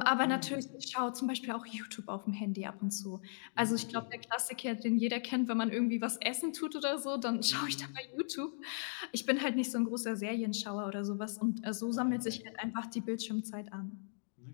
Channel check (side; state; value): right; silent; digital silence